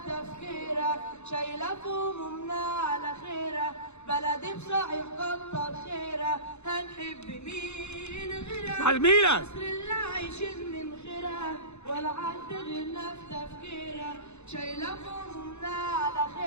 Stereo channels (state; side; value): late; right; 0.81 ms